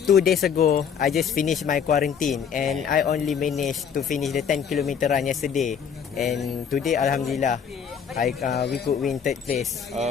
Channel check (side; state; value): right; quieter; 7.3 dB